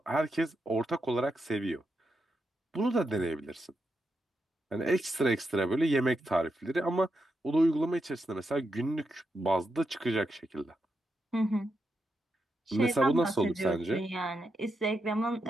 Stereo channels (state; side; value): normal; both; correlation 0.85